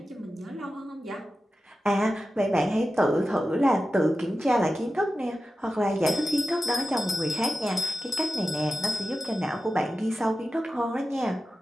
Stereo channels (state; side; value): normal; both; correlation 0.93